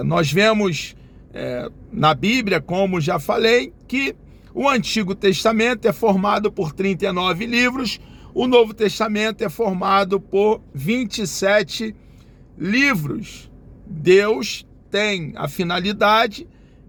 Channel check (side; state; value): both; identical; correlation 1.00